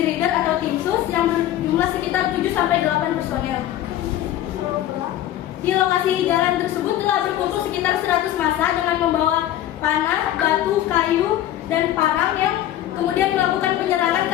atau Tim Sus yang berjumlah sekitar 7-8 personel. Di lokasi jalan tersebut telah berkumpul sekitar 100 massa dengan membawa panah, batu, kayu, dan parang yang kemudian melakukan penyerangan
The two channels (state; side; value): quieter; right; 12.7 dB